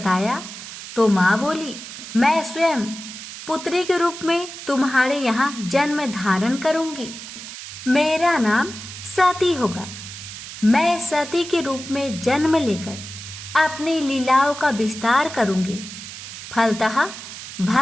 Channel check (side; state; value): right; noise; hiss, 11 dB below the sound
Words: तो माँ बोली, मैं स्वयं पुत्री के रूप में तुम्हारे यहाँ जन्म धारण करूंगी। मेरा नाम सती होगा। मैं सती के रूप में जन्म लेकर अपनी लीलाओं का विस्तार करूंगी। फलतः